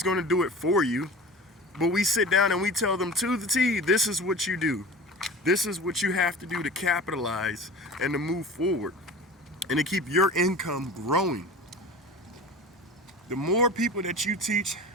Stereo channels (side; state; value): both; normal; correlation 0.36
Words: going to do it for you, but we sit down and we tell them to the T, this is what you do. This is what you have to do to capitalize and to move forward and to keep your income growing. The more people that you teach